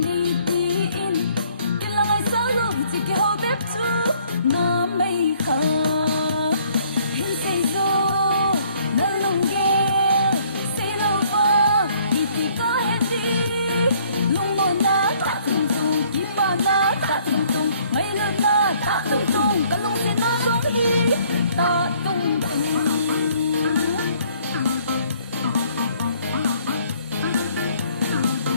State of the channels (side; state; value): both; inverted; correlation -0.62